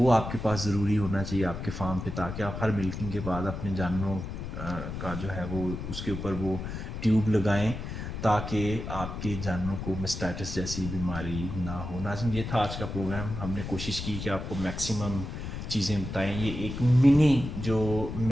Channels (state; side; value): noise; left; rumble, 7 dB below the sound